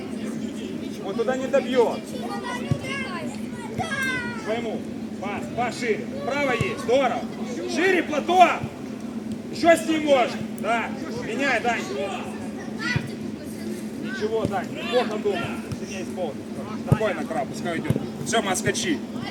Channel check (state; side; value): identical; both; correlation 1.00